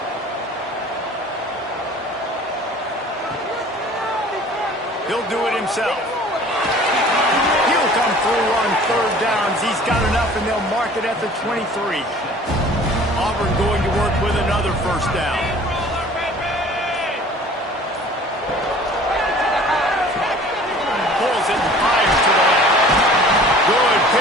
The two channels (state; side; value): normal; both; correlation 0.48